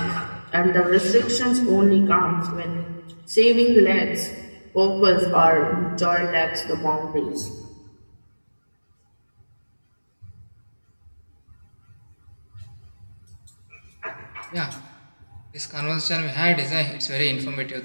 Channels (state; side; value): inverted; both; correlation -1.00